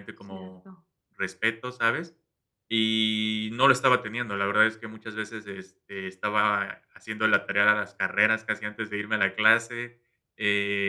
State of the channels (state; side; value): identical; both; correlation 1.00